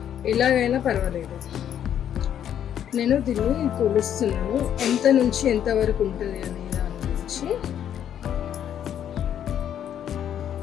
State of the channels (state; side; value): quieter; right; 9.8 dB